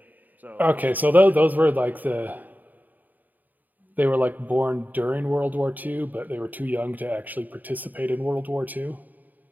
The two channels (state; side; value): late; left; 0.085 ms